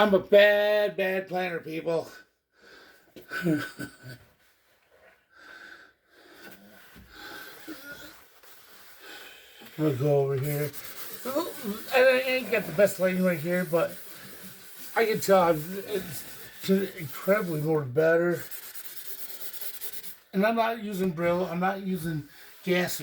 a bad planner, people. I'm gonna go over here. I ain't got the best lighting right here, but I can tell it's incredibly more better. And I'm not using Brillo. I'm not using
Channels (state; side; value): identical; both; correlation 1.00